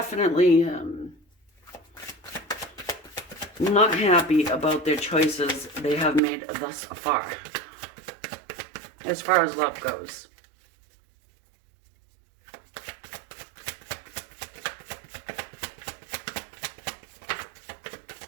not happy about their choices they have made thus far as love goes.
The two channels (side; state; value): left; drops out; at 6.2 s